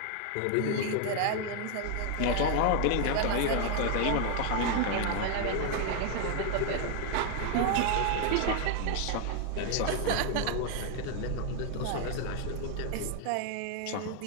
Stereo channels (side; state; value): both; different; correlation 0.00